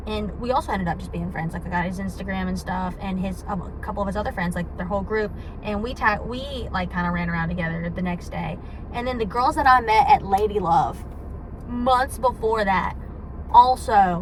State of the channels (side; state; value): both; identical; correlation 1.00